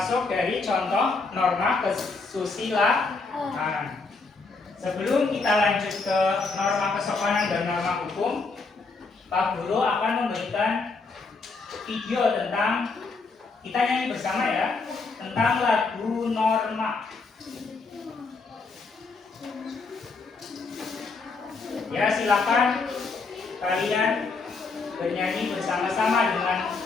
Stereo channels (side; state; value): right; quieter; 4.1 dB